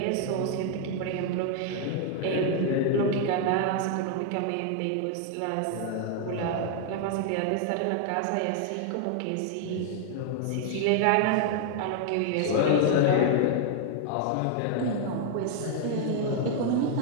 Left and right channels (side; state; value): both; different; correlation 0.00